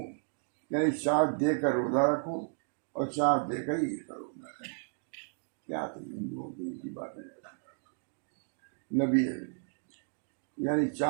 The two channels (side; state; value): left; silent; digital silence